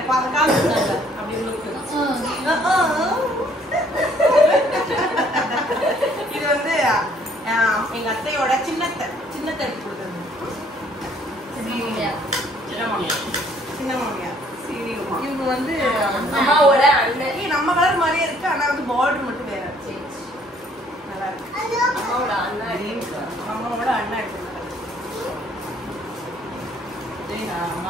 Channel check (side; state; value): both; normal; correlation 0.61